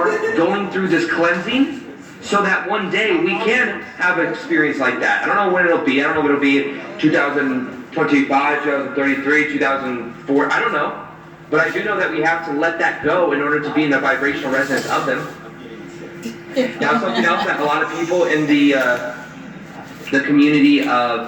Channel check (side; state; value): both; identical; correlation 1.00